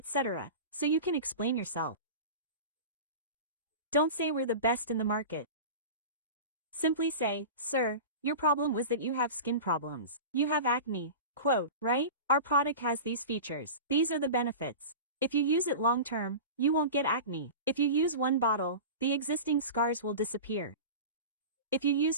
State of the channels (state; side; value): inverted; both; correlation -0.31